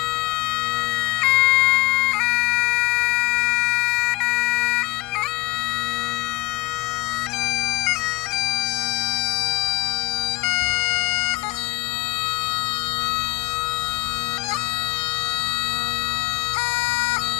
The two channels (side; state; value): right; quieter; 21.0 dB